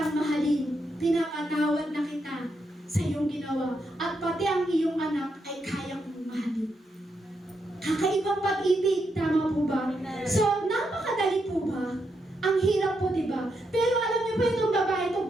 mahalin, pinapatawad na kita sa iyong ginawa at pati ang iyong anak ay kaya kong mahalin. Kakaibang pag-ibig, tama po ba? So, napakadali po ba? Ang hirap po, di ba? Pero alam niyo po itong babae ito,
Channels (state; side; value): normal; both; correlation 0.82